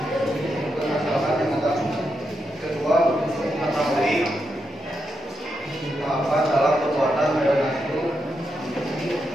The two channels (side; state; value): both; normal; correlation 0.84